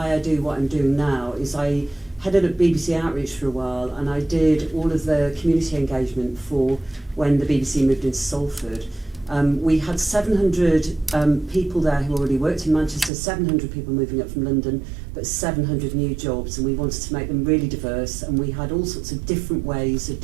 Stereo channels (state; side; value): drops out; left; at 13.1 s